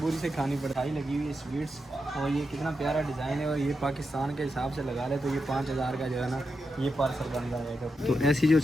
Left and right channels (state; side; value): normal; both; correlation 0.87